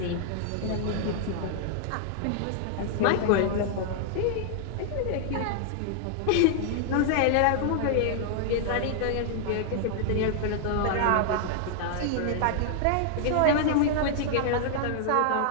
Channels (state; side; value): different; both; correlation -0.01